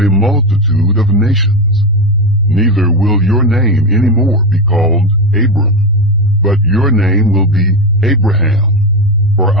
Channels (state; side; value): normal; both; correlation 0.14